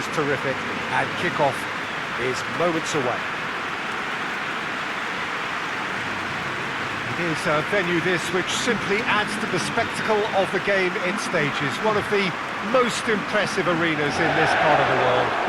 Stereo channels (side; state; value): both; identical; correlation 1.00